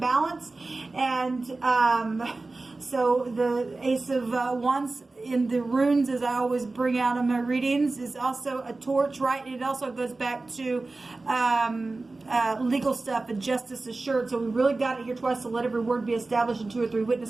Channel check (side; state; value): left; quieter; 3.4 dB